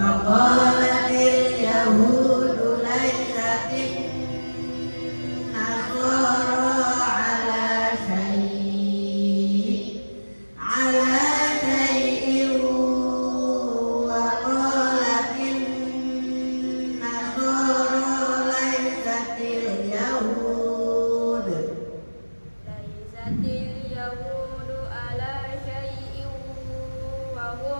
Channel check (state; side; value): inverted; both; correlation -1.00